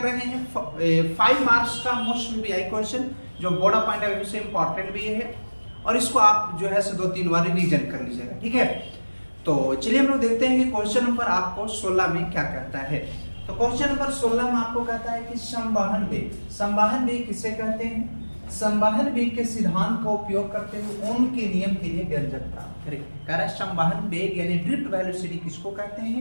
रहे हैं 5 मार्क्स का मोस्ट वीआई क्वेश्चन, जो board of point of view से इंपॉर्टेंट भी है, और इसको आप जो है 2-3 बार रिवीजन कर लीजिएगा, ठीक है। तो चलिए हम लोग देखते हैं कि क्वेश्चन नंबर आपको 16 में क्या कहता है। तो क्वेश्चन नंबर 16 में आपको कहता है कि संवहन वेग। संवहन वेग किसे कहते हैं? संवहन वेग के सिद्धांत का उपयोग करते हुए ओम के नियम के लिए व्यंजक प्राप्त करें। कह रहा है संवहन वेग यानी ड्रिफ्ट वेलोसिटी किसको कहते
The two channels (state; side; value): inverted; both; correlation -1.00